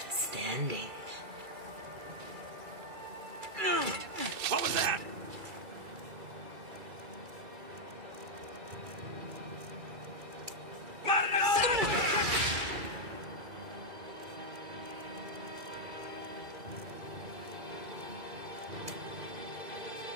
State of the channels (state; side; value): late; left; 2.3 ms